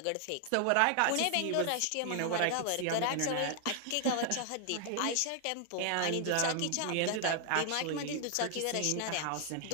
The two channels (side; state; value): both; different; correlation 0.00